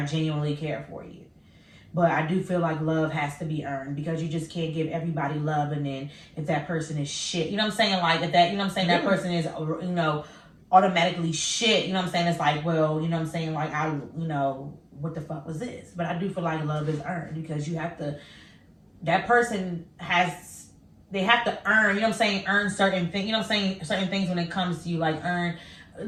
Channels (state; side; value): identical; both; correlation 1.00